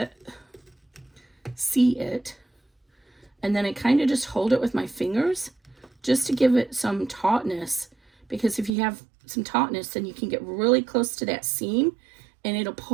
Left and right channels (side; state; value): left; drops out; at 8.7 s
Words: and then I kind of just hold it with my fingers just to give it some tautness, because if you have some tautness, then you can get really close to that seam and it'll